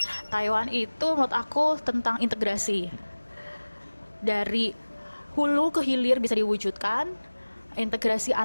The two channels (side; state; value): both; inverted; correlation -1.00